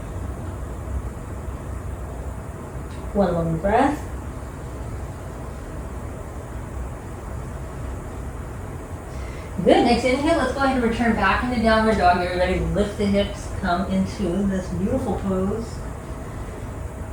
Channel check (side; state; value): both; identical; correlation 1.00